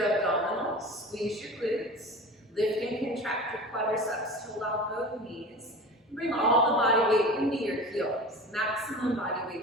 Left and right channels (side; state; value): both; normal; correlation 0.35